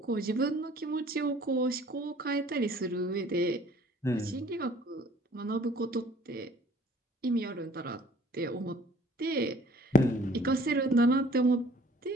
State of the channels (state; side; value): normal; both; correlation 0.53